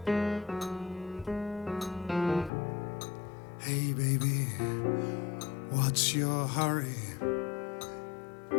Hey baby, what's your hurry?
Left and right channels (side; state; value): right; drops out; at 2.5 s